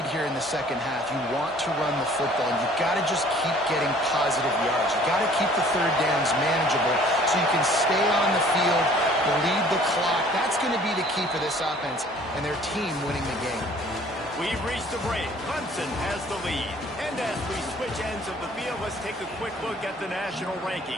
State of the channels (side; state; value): both; normal; correlation 0.54